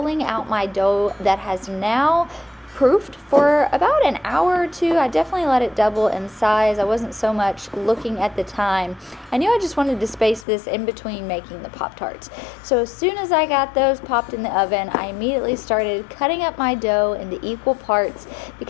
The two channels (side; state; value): right; drops out; at 10.5 s